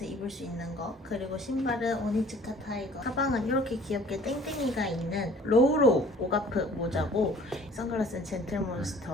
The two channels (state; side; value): normal; both; correlation 0.51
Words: 입을 수 있는 거 그리고 신발은 오니츠카 타이거 가방은 이렇게 귀엽게 땡땡이가 있는 로우로우 오가프 모자고 선글라스는